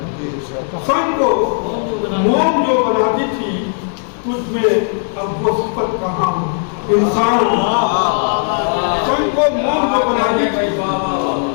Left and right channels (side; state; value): right; silent; 69 dB below the other